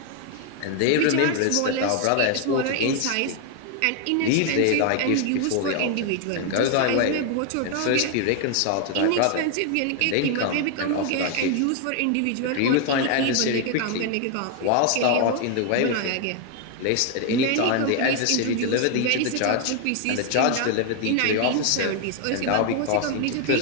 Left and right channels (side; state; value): both; different; correlation 0.00